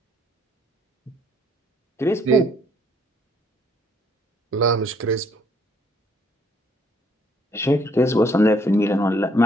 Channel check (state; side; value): normal; both; correlation 0.65